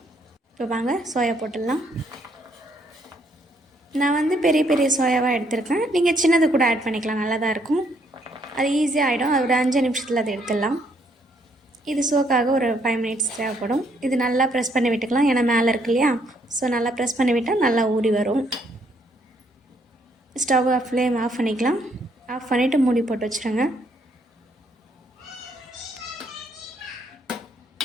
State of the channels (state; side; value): normal; both; correlation 0.70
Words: இப்போ வாங்க சோயா போட்டுடலாம். நான் பெரிய பெரிய சோயாவாக எடுத்திருக்கேன். நீங்கள் சின்னது கூட ஆட் பண்ணிக்கலாம், நல்லா தான் இருக்கும். அது ஈஸியாக ஆகிடும். அது ஒரு 5 நிமிஷத்தில் அதை எடுத்துடலாம். இது சோக்காக ஒரு 5 மினிட்ஸ் தேவைப்படும். இது நல்லா ப்ரெஸ் பண்ணி விட்டுக்கலாம், ஏன்னா மேலே இருக்கு இல்லையா. ஸோ நல்லா ப்ரெஸ் பண்ணி விட்டால் நல்லா ஊறி வரும். ஸ்டவ் ஃப்ளேம் ஆஃப் பண்ணிக்கலாம். ஆஃப் பண்ணிவிட்டு மூடி போட்டு வச்சுருங்க.